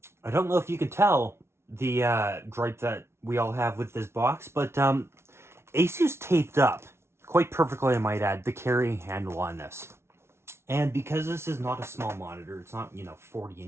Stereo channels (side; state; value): left; late; 0.12 ms